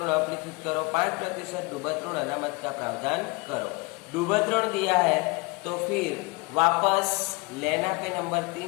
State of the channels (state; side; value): quieter; right; 27.1 dB